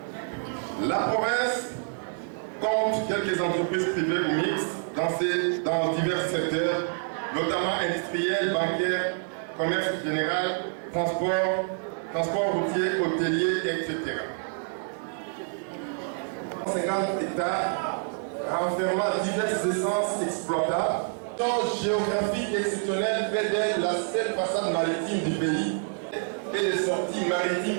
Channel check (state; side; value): silent; left; 60 dB below the other